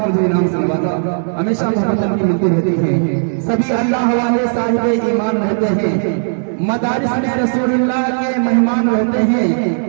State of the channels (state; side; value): silent; left; digital silence